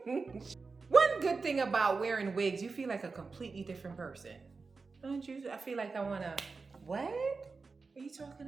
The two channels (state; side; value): quieter; left; 4.4 dB